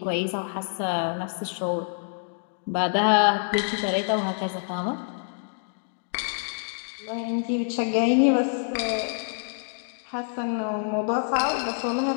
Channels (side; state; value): right; silent; digital silence